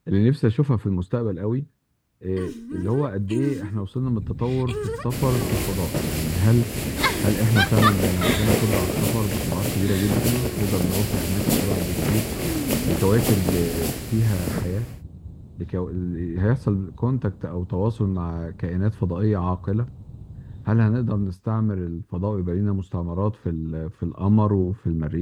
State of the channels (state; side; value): identical; both; correlation 1.00